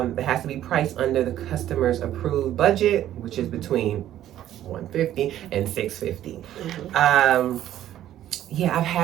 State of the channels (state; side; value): quieter; left; 12.3 dB